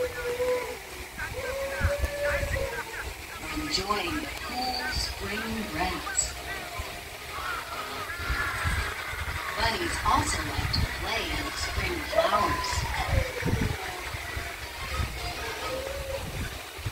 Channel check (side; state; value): both; identical; correlation 1.00